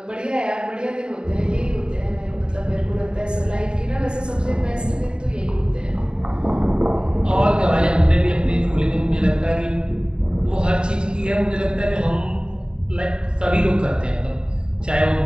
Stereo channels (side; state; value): left; late; 0.049 ms